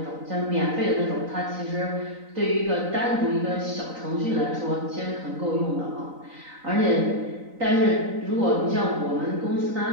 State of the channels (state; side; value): late; left; 3.9 ms